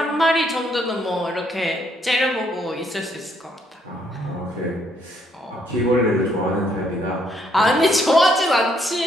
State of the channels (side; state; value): both; normal; correlation 0.70